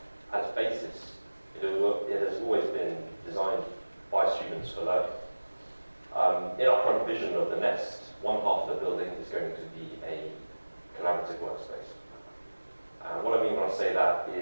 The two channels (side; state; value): both; inverted; correlation -1.00